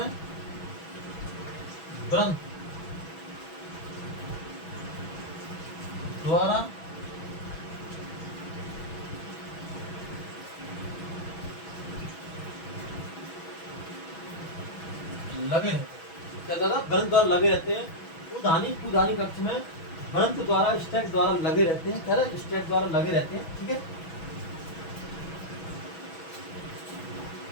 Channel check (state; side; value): late; right; 6.1 ms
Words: ब्रंथ द्वारा लगे रहते हैं। क्या ज्यादा ब्रंथ द्वारा लगे रहते हैं। पुधानी कक्ष में ब्रंथ द्वारा स्टैक द्वारा लगे रहते हैं। क्या स्टैक द्वारा लगे रहते हैं। ठीक है,